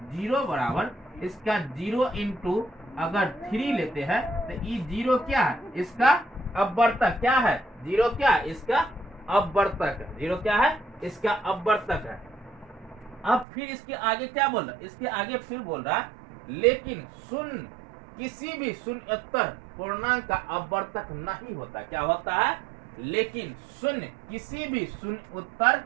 0 बराबर इसका 0 इंटू अगर 3 लेते हैं, तो ये 0 क्या है इसका अपवर्तक, क्या है 0 क्या है इसका अपवर्तक है, 0 क्या है इसका अपवर्तक है। अब फिर इसके आगे क्या बोल रहा है, इसके आगे फिर बोल रहा है लेकिन शून्य किसी भी शून्येतर पूर्णांक का अपवर्तक नहीं होता, क्या होता है, लेकिन शून्य किसी भी शून्योत्तर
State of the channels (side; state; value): left; drops out; at 13.5 s